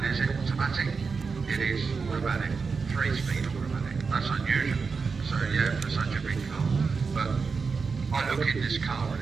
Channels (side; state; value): left; quieter; 5.0 dB